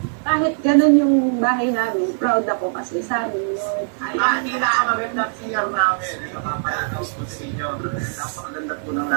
Kahit ganun yung bahay namin, proud ako kasi sa amin yun. Hindi na magandang CR namin. Ito kapalatos po sa inyo. Napakaganda po ng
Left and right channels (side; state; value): left; silent; 56 dB below the other